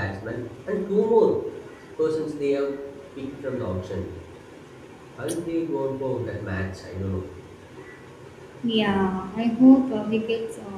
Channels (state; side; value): identical; both; correlation 1.00